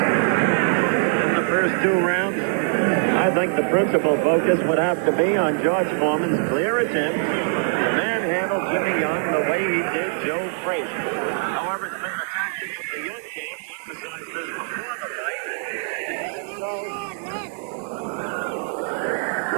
In the first two rounds, I think the principal focus would have to be on George Foreman's clear attempt to manhandle Jimmy Young the way he did Joe Frazier. However, it's been the tactic of the Young game to emphasize this before the fight.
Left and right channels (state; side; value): silent; left; 64 dB below the other